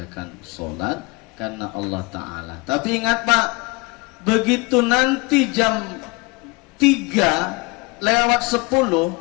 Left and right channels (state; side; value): quieter; right; 26.1 dB